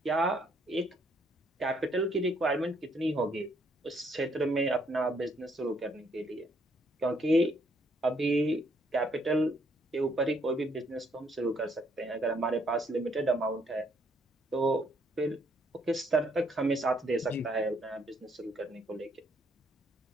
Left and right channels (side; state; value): both; normal; correlation 0.70